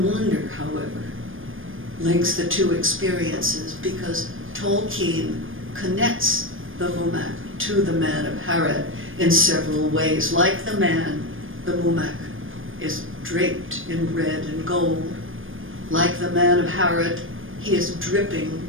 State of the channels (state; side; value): late; left; 0.59 ms